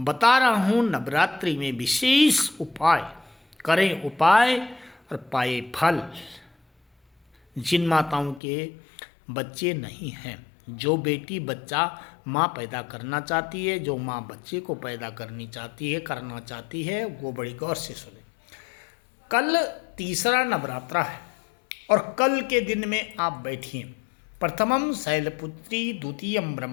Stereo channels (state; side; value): drops out; right; at 8.4 s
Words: रहा हूँ नवरात्रि में विशेष उपाय। करें उपाय और पाए फल। जिन माताओं के बच्चे नहीं हैं, जो बेटी बच्चा माँ पैदा करना चाहती है, जो माँ बच्चे को पैदा करना चाहती है, वो बड़ी गौर से सुने। कल तीसरा नवरात्रा है और कल के दिन में आप बैठिए। प्रथमम शैलपुत्री, द्वितीयम